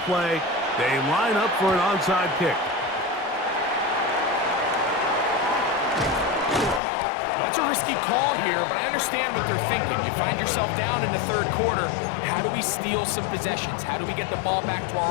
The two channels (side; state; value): right; drops out; at 6.8 s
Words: play, they line up for an onside kick. That's a risky call here, but I understand what they're thinking. You find yourself down in the third quarter. How do we steal some possessions? How do we get the ball back to